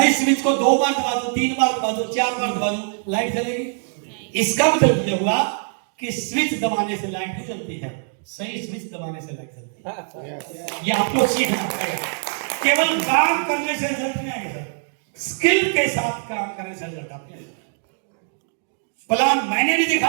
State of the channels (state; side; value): silent; left; 59 dB below the other